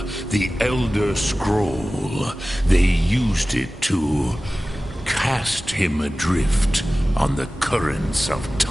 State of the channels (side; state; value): both; normal; correlation 0.96